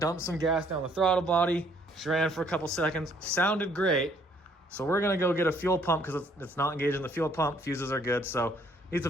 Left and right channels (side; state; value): both; normal; correlation 0.64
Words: dumped some gas down the throttle body. She ran for a couple seconds, sounded great. So we're gonna go get a fuel pump because it's not engaged in the fuel pump. Fuses are good, so needs a